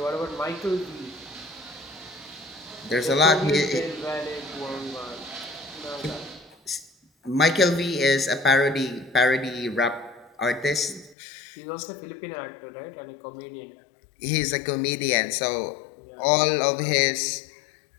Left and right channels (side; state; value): right; drops out; at 11.2 s